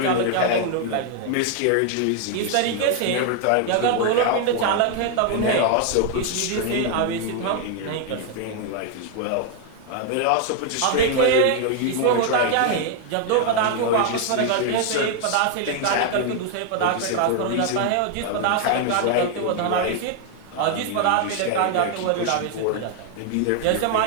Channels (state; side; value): different; both; correlation 0.00